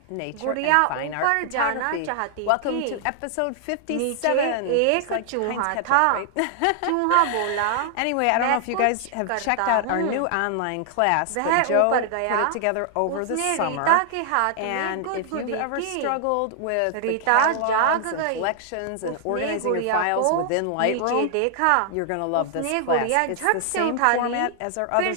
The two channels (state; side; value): different; both; correlation 0.00